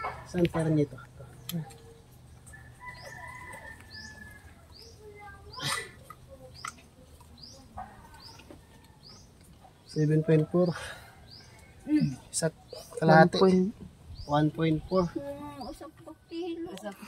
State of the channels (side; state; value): both; identical; correlation 1.00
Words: Saan parang nito? 7.4. Sa kalahati. 1.4. Usap pa kilo. Usap